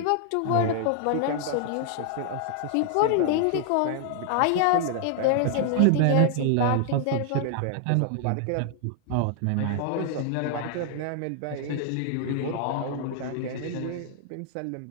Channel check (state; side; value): different; both; correlation 0.00